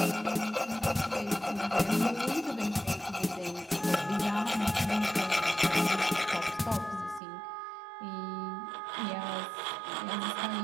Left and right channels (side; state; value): left; drops out; at 7.2 s